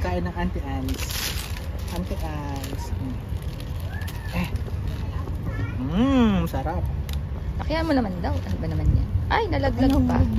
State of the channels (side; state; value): both; identical; correlation 1.00